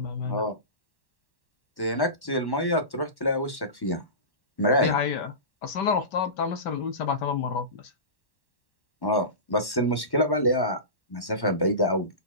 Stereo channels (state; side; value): late; right; 1.1 ms